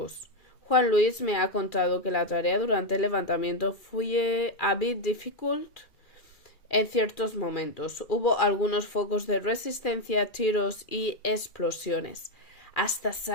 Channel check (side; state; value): right; late; 2.4 ms